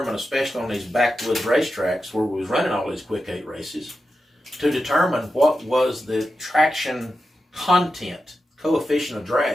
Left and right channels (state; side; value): normal; both; correlation 0.90